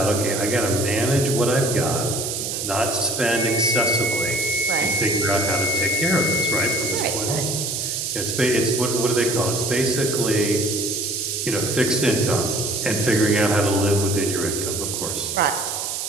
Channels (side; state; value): right; noise; hiss, 3 dB below the sound